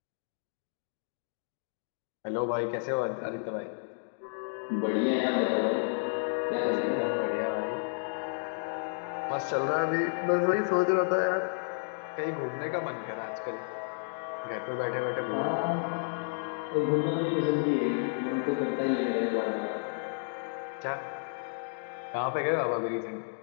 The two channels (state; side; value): silent; right; digital silence